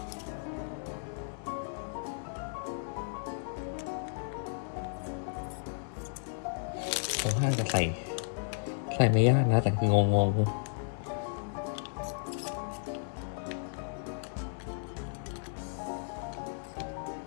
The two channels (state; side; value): silent; right; digital silence